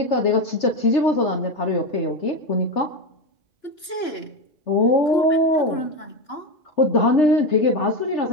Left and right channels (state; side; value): late; right; 2.9 ms